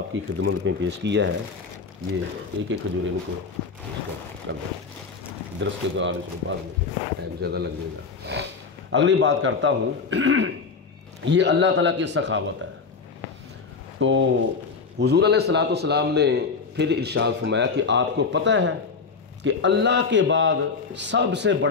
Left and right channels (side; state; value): right; quieter; 4.9 dB